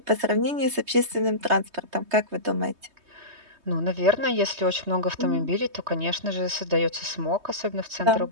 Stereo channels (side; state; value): left; late; 3.2 ms